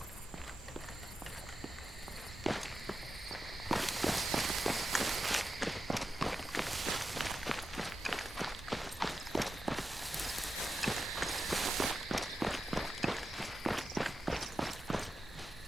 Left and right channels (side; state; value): both; normal; correlation 0.90